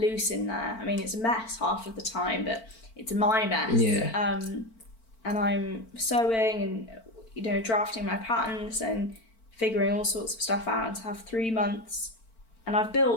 in there. I mean, it's a mess half of the time, but it's my mess. And I'm sewing and, you know, drafting my patterns and figuring all sorts of stuff out, and to have 3 months. And I've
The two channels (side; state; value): right; late; 4.5 ms